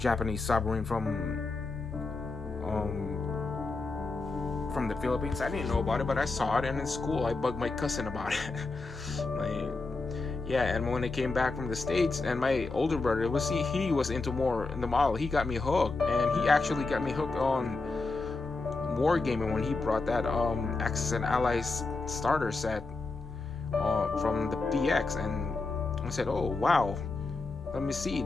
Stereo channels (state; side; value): quieter; right; 3.7 dB